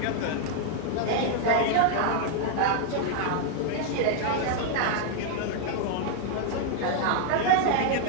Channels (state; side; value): different; both; correlation 0.00